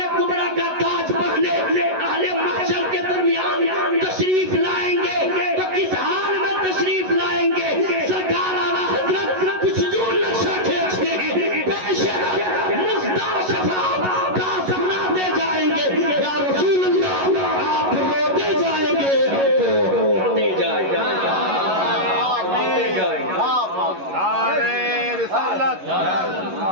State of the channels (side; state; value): left; late; 11 ms